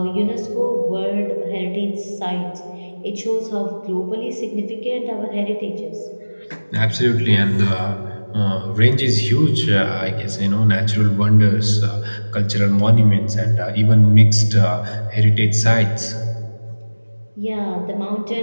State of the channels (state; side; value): inverted; both; correlation -1.00